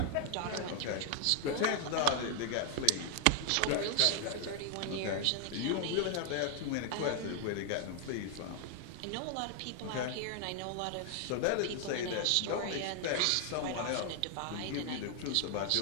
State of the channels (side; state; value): both; different; correlation 0.00